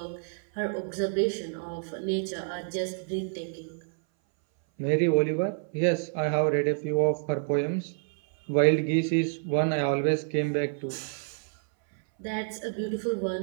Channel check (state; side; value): silent; left; 59 dB below the other